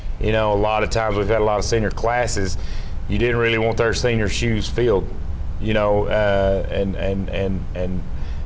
A lot of times we've had a lot of senior classes. You didn't really want their senior shoes filled, and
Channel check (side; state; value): both; identical; correlation 1.00